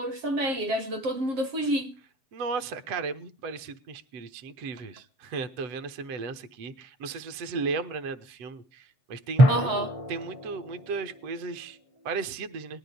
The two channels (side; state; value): left; late; 8.0 ms